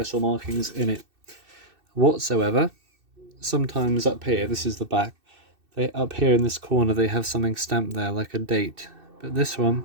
markings in it whatsoever. Sometimes up here, this is the back, up here in this corner they have something stamped there like a date, but this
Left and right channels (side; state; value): left; late; 2.6 ms